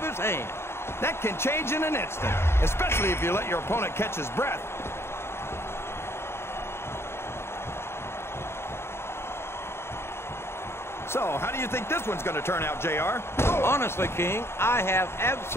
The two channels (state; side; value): late; right; 0.12 ms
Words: his hand. That can change in an instant, especially if you let your opponent catch his breath. So, how do you think this one's going to turn out, JR? Honestly, King, I have